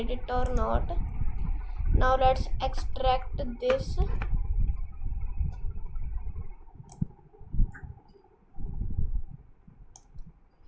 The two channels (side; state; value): both; identical; correlation 1.00